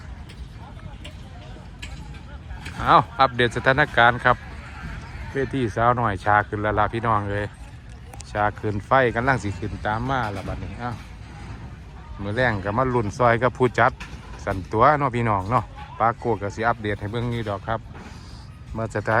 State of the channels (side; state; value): both; identical; correlation 1.00